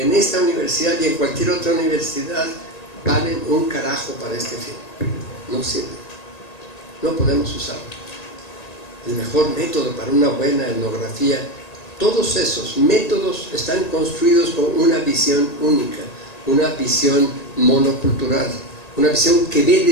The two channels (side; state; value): right; late; 1.8 ms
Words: esta universidad y en cualquier otra universidad valen un carajo para este fin. No sirve, no podemos usarlo. El mejor método para una buena etnografía, todos esos métodos están construidos con una visión única, una visión monocultural, una visión que ve